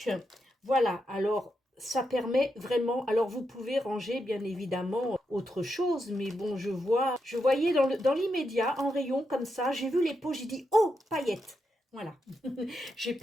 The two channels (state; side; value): normal; both; correlation 0.84